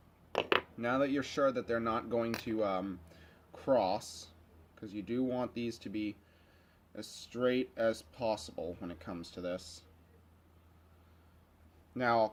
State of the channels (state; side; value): identical; both; correlation 1.00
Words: Now that you're sure that they're not going to cross, because you do want these to be as straight as possible when it comes to this. Now I'll